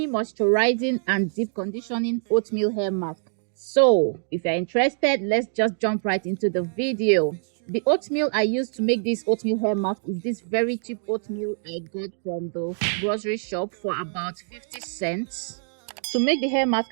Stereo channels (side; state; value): left; silent; digital silence